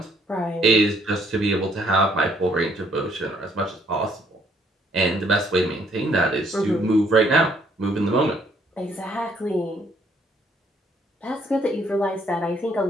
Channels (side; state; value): both; normal; correlation 0.66